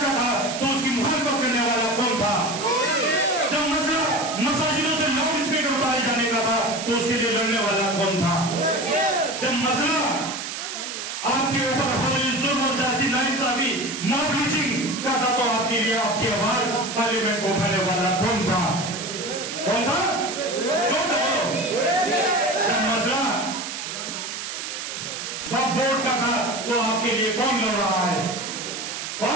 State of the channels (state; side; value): noise; right; hiss, 6 dB below the sound